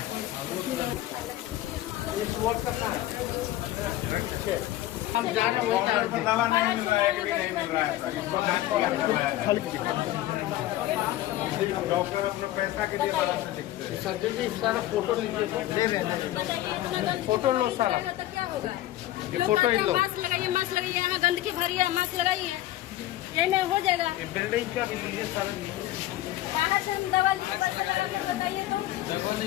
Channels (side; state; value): right; quieter; 14.8 dB